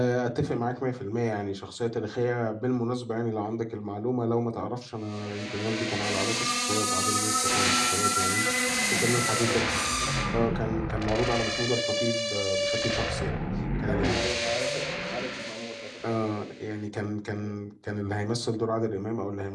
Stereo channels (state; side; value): identical; both; correlation 1.00